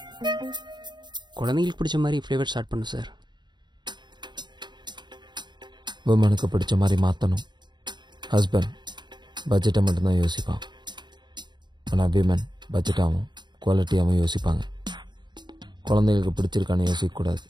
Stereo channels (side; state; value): left; late; 0.21 ms